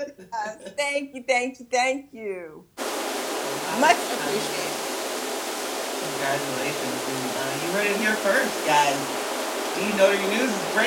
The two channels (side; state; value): both; identical; correlation 1.00